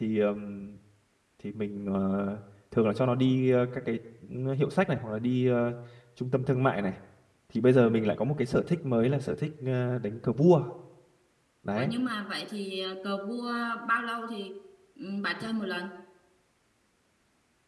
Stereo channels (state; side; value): identical; both; correlation 1.00